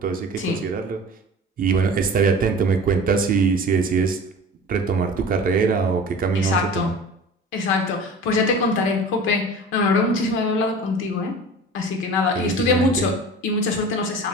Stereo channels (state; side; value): normal; both; correlation 0.39